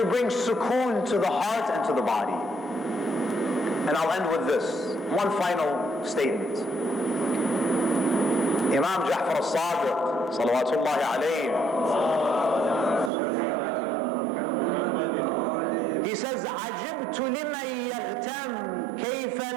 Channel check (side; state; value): left; drops out; at 13.1 s